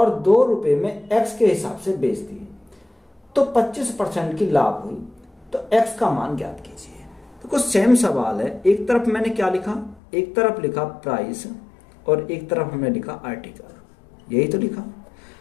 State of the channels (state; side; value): drops out; right; at 10.0 s